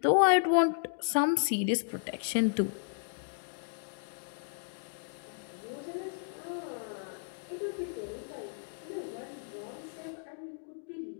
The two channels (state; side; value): silent; right; digital silence